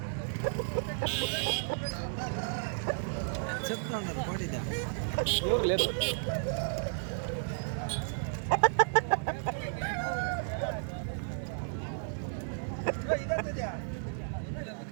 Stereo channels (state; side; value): silent; left; 56 dB below the other